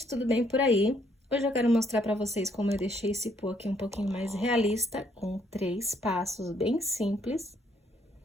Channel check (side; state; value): both; normal; correlation 0.69